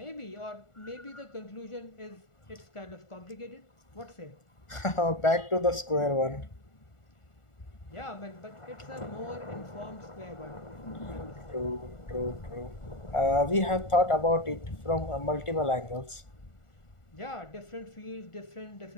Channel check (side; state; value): right; late; 1.4 ms